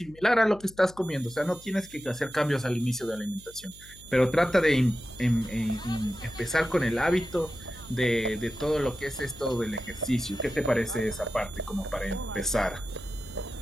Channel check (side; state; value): left; noise; hum, 22 dB below the sound